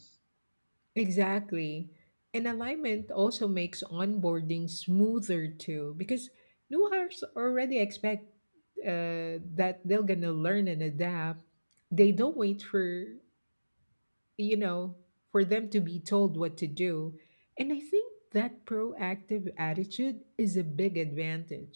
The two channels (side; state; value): both; inverted; correlation -1.00